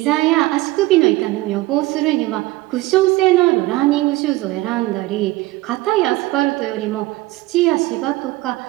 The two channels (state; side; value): quieter; left; 19.2 dB